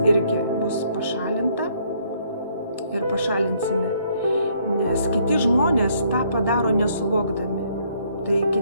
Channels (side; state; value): both; inverted; correlation -0.66